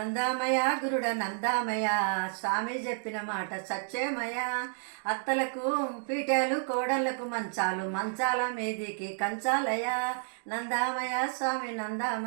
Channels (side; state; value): left; silent; digital silence